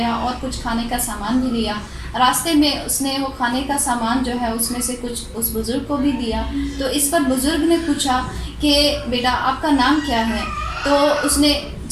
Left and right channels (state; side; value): identical; both; correlation 1.00